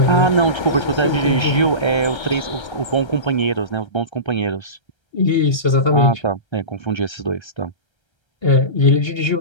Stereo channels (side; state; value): right; late; 1.3 ms